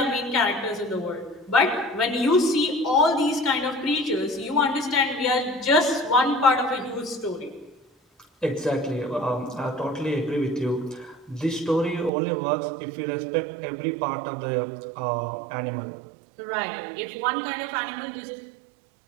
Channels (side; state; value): left; drops out; at 12.1 s